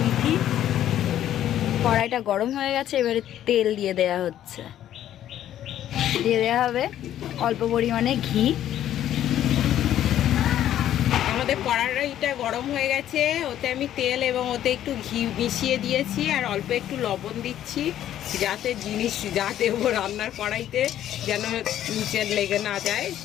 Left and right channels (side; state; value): right; quieter; 11.6 dB